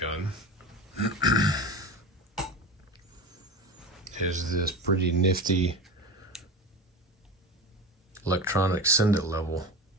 gun is this pretty nifty electronic send-it level.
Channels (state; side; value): normal; both; correlation 0.27